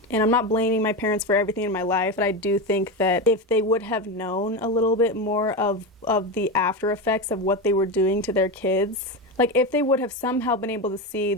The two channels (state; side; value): normal; both; correlation 0.18